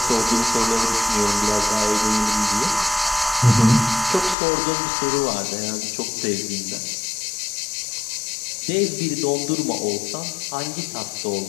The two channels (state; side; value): drops out; right; at 4.4 s